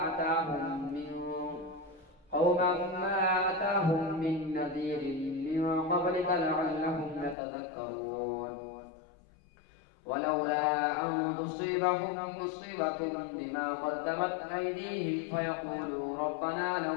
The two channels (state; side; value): drops out; right; at 7.4 s